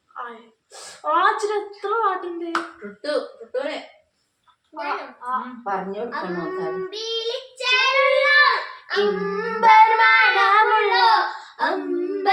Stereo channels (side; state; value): both; identical; correlation 1.00